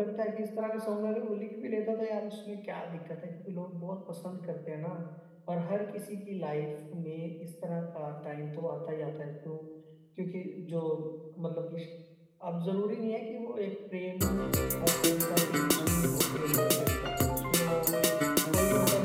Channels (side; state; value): both; identical; correlation 1.00